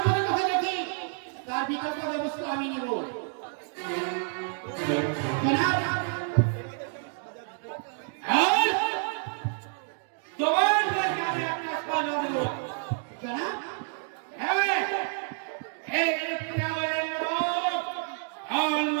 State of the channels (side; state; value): left; silent; 58 dB below the other